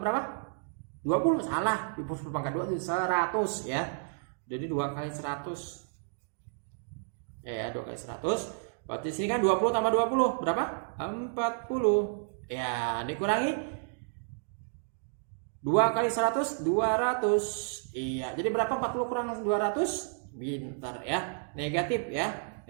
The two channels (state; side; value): silent; left; digital silence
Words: 20. Salah, 10 pangkat 2 itu 100 ya. Jadi 2 kali 100 ya, 2 kali 100 berarti sini kan 20 tambah 20 berapa? 40 ya, dikurangi 2 kali 100 200. Iya, jadi berapa 40 kurang 200? Pintar ya, negatif ya.